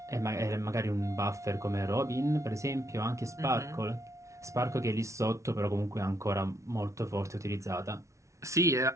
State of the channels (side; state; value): left; late; 0.14 ms